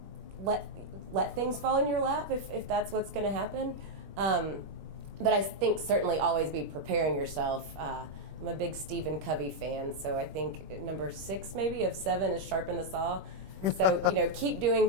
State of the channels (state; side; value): late; left; 21 ms